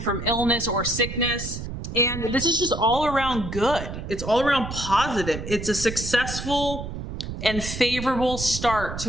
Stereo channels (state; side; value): noise; right; rumble, 7 dB below the sound